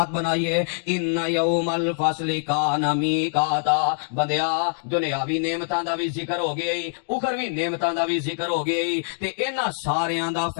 بنائیے ان یوم الفصل کان میقاتا بندیا دنیاوی نعمتاں دا بھی ذکر ہو گیا اخروی نعمتاں دا بھی ذکر ہو گیا تے انہاں ساریاں دا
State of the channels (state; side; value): silent; right; digital silence